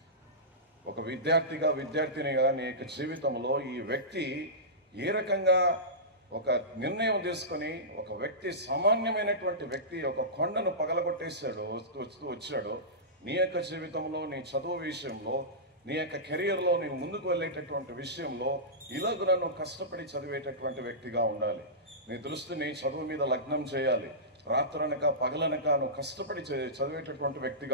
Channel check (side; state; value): both; normal; correlation -0.18